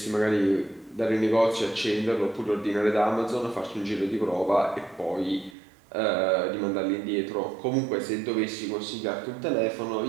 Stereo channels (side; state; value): left; drops out; at 5.6 s